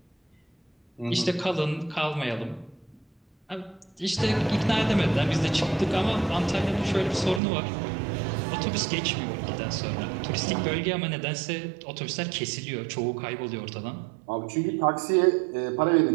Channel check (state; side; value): drops out; left; at 7.4 s